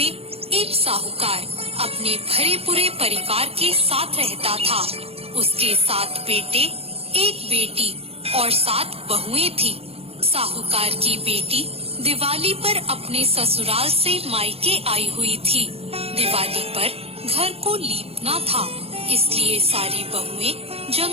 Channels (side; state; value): left; late; 0.29 ms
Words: एक साहूकार अपने भरे पूरे परिवार के साथ रहता था। उसके 7 बेटे, एक बेटी और 7 बहुएं थी। साहूकार की बेटी दिवाली पर अपने ससुराल से मायके आई हुई थी। दिवाली पर घर को लीपना था, इसलिए सारी बहुएं